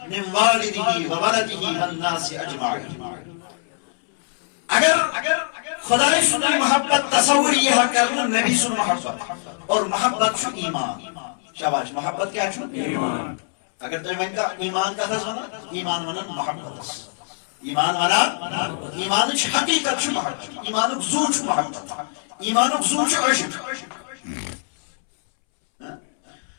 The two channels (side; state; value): right; silent; 64 dB below the other